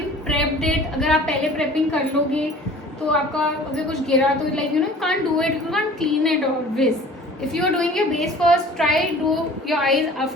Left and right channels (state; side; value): normal; both; correlation 0.46